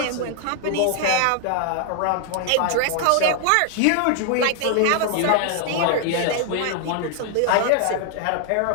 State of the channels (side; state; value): both; different; correlation 0.00